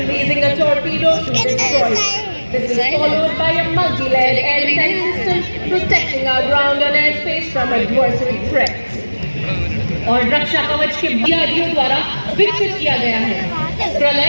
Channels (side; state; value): both; inverted; correlation -1.00